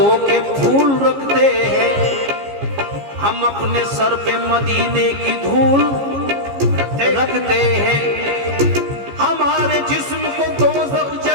के फूल रखते हैं। हम अपने सर पे मदीने की धूल रखते हैं। हमारे जिस्म को दोज़ख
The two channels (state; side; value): late; left; 15 ms